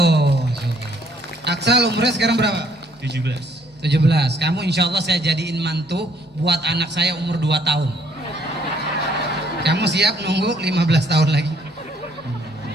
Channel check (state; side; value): normal; both; correlation 0.65